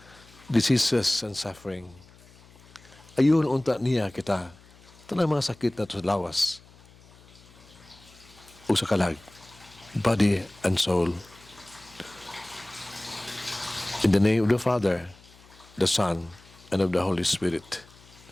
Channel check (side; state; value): left; noise; hum, 25 dB below the sound